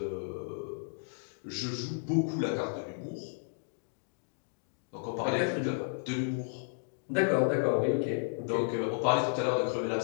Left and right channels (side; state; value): right; silent; digital silence